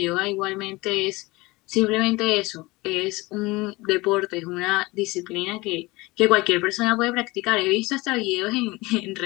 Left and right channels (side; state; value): right; quieter; 22.1 dB